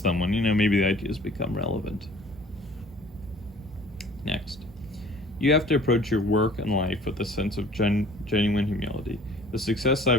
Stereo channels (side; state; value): both; normal; correlation 0.50